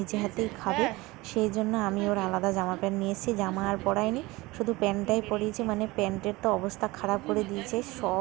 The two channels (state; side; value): quieter; left; 21.5 dB